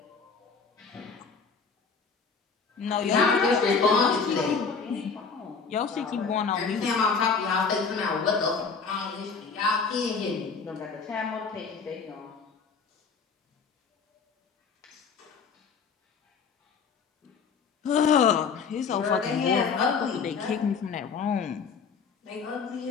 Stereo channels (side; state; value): right; quieter; 5.4 dB